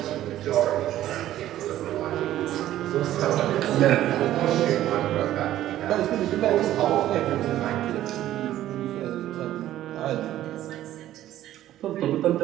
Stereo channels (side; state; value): left; quieter; 13.3 dB